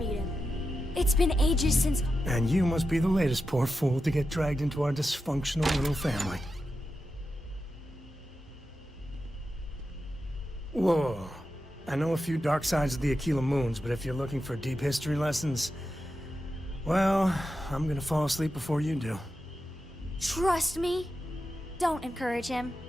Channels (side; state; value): both; normal; correlation 0.90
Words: him. It's been ages since... And you must be the latest poor fool to get dragged into our dysfunctional little family. Whoa. I know a few dark sides of the Aquila Moons, but if you're looking for deep history lessons, well, I'm gonna fall asleep before you do. Trust me. Don't encourage him.